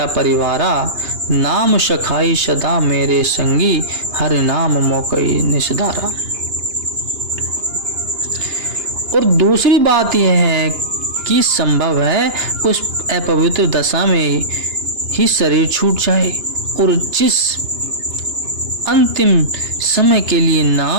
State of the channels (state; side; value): late; left; 2.9 ms